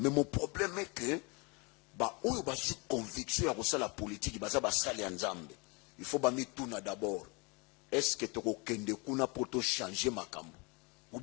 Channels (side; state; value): right; quieter; 29.3 dB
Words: mon problème est que, on a une conviction à la politique, il faut mettre tout d'abord. Est-ce que tu as pour changer ma cambo? Ou